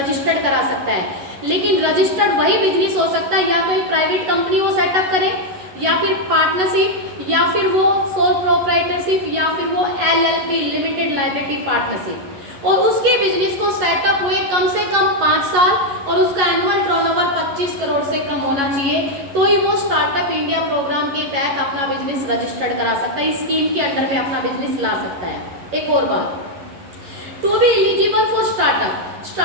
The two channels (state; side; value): late; left; 11 ms